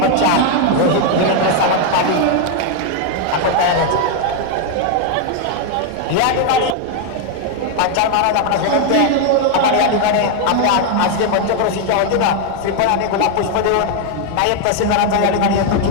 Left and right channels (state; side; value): different; both; correlation 0.01